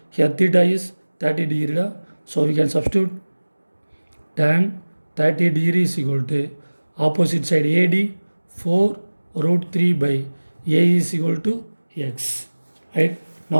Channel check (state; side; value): inverted; both; correlation -1.00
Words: Here theta is 30 degree. So we can substitute tan 30 degree is equal to opposite side AD 4 root 3 by A is equal to x, right?